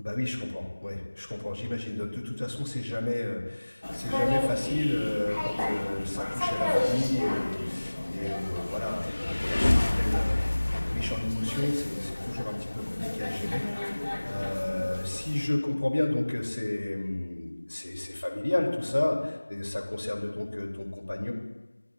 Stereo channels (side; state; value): both; inverted; correlation -1.00